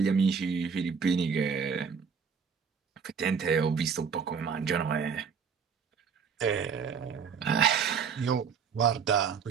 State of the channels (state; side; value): quieter; left; 6.3 dB